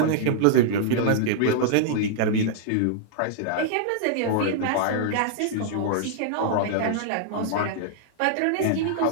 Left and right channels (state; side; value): different; both; correlation -0.01